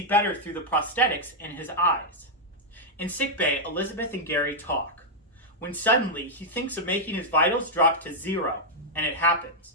better through the prosthetics in his eyes. In sickbay, Elizabeth and Gary talk, when suddenly he thinks of making his vitals drop to 0, and it happens.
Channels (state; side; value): normal; both; correlation -0.04